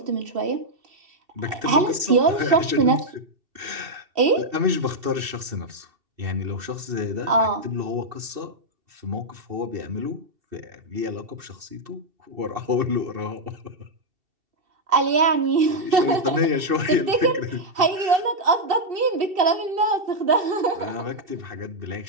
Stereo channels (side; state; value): left; late; 2.7 ms